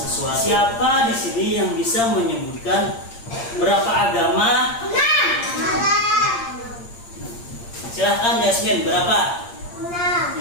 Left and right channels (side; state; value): right; late; 8.7 ms